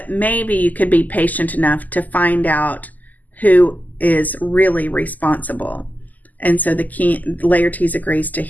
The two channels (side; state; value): right; late; 0.081 ms